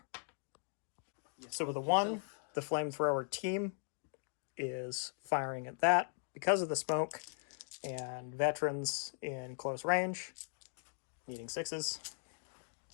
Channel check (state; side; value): silent; right; digital silence